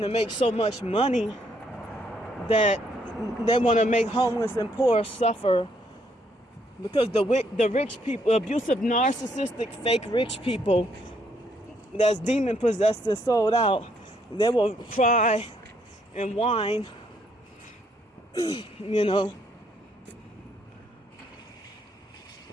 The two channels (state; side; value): normal; both; correlation 0.71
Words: to make so much money that they want to make homeless and poor suffer because the rich people, abusive, narcissistic, fake rich people that's demon possessed and sold out, they will cry and whine, you know.